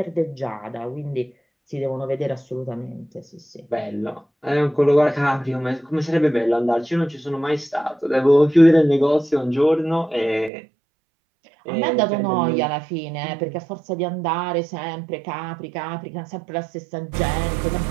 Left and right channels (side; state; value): left; drops out; at 10.5 s